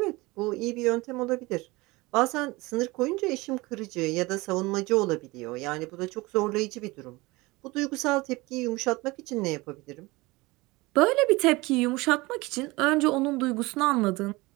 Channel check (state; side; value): quieter; left; 22.4 dB